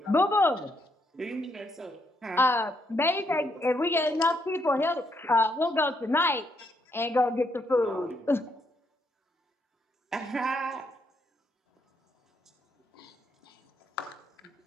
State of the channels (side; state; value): both; normal; correlation 0.76